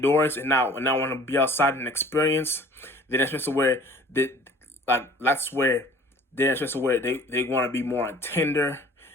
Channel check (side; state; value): both; normal; correlation 0.49